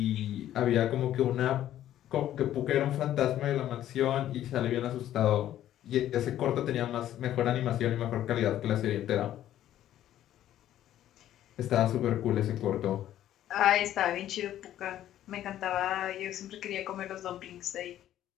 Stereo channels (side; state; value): right; quieter; 12.2 dB